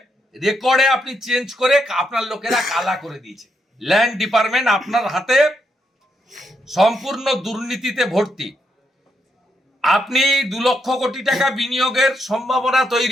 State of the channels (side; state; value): both; normal; correlation 0.80